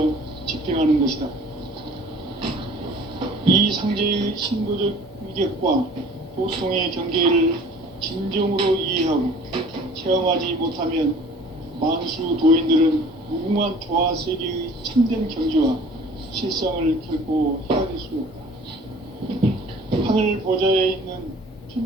집행하는 것이다. 이 상제의 신도적 위격과 도통의 경계를 진정으로 이해하고 체험하지 못하면 만수 도인들은 무궁한 조화 세계의 참된 경지와 실상을 결코 헤아릴 수 없다. 하늘 보좌에 있는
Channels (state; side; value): normal; both; correlation 0.49